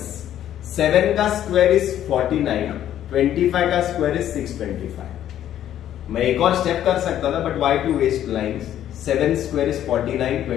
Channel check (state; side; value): quieter; right; 11.3 dB